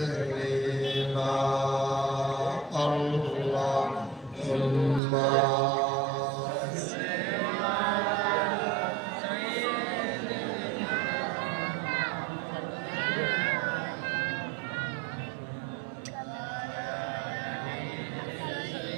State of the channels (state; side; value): drops out; left; at 5.0 s